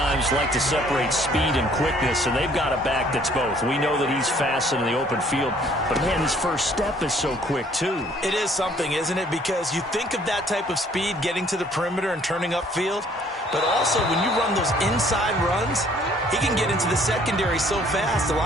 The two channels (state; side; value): normal; both; correlation 0.60